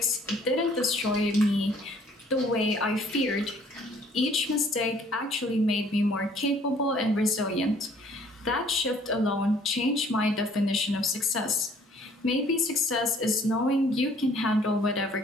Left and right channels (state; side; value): normal; both; correlation 0.58